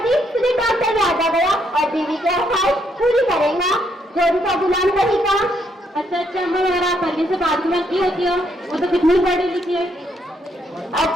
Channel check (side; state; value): both; normal; correlation 0.73